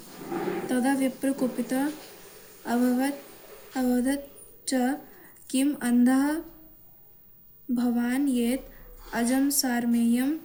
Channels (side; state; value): both; identical; correlation 1.00